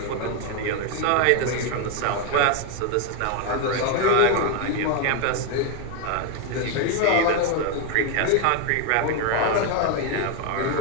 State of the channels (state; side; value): different; both; correlation 0.01